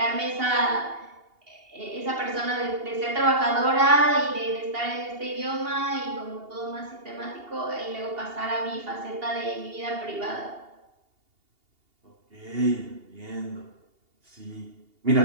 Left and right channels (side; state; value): left; late; 2.8 ms